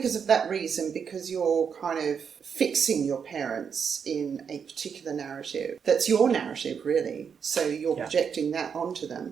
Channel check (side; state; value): left; quieter; 6.8 dB